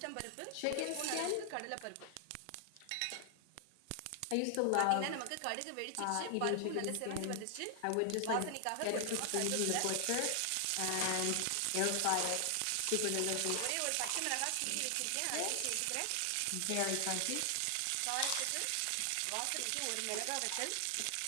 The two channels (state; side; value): different; both; correlation 0.00